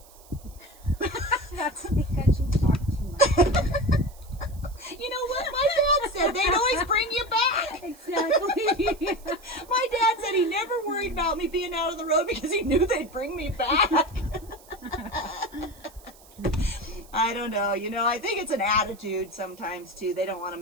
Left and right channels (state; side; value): noise; right; hiss, 24 dB below the sound